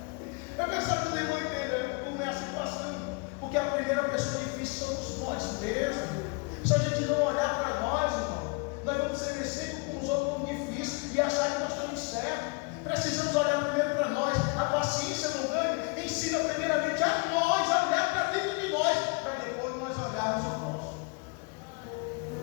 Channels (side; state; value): right; quieter; 30.9 dB